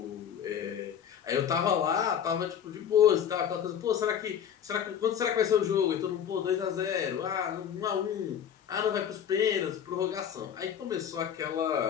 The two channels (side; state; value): right; quieter; 8.7 dB